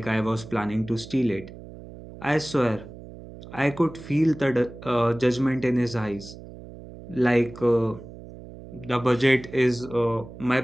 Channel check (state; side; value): noise; right; hum, 16 dB below the sound